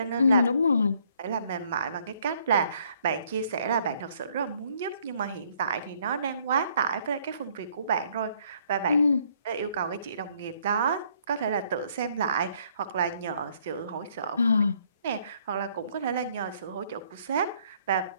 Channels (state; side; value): inverted; both; correlation -0.65